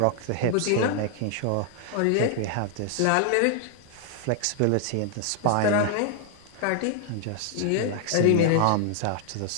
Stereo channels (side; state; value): both; different; correlation 0.00